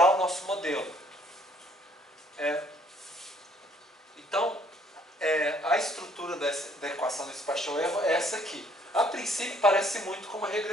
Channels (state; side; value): normal; both; correlation 0.63